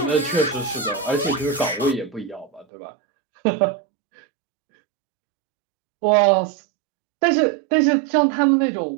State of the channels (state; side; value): drops out; left; at 2.7 s